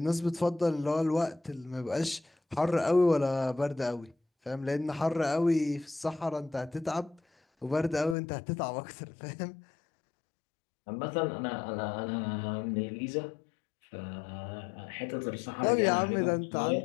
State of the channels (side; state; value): right; drops out; at 8.2 s